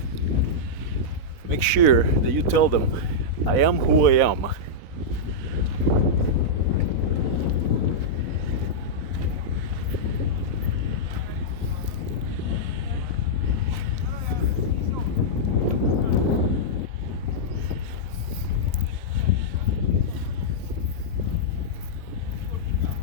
make sure that you tell them, I am who I am.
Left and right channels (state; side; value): late; left; 4.1 ms